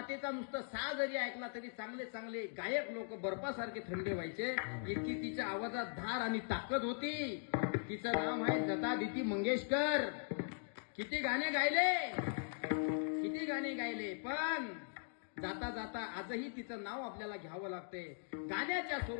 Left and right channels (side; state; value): right; silent; digital silence